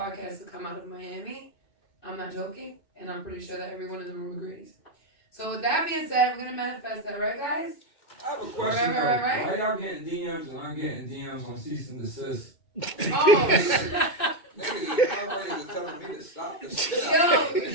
to come out of Miami, I'm not joking. And I'm pretty sure that everyone in the room agrees. So with that being said, we're going to manifest that, right, guys? I have a question. Right. Why y'all getting DMs and I'm getting DMs on cease and desist? Oh, Niggas is already telling me to stop the shit out.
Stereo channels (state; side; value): late; right; 2.2 ms